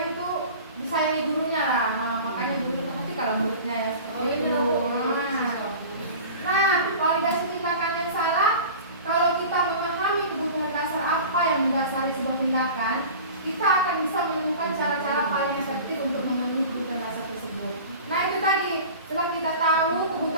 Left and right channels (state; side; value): inverted; both; correlation -0.38